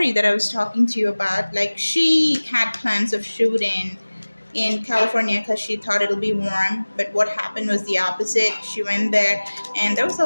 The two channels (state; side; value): inverted; both; correlation -1.00